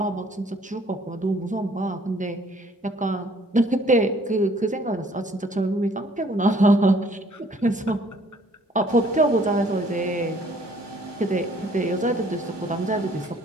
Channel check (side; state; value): both; normal; correlation 0.59